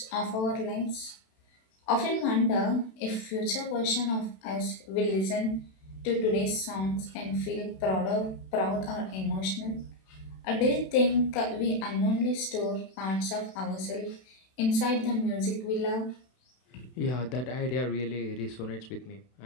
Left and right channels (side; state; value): right; late; 32 ms